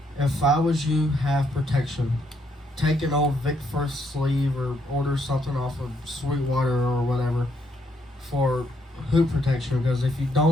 If I was you, have protection. Take an old Vic First sleeve or order something off of Sweetwater or whatever for hoop protection, because if you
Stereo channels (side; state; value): both; normal; correlation 0.74